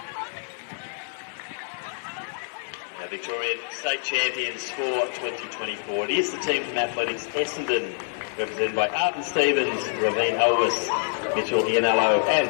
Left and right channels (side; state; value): right; silent; digital silence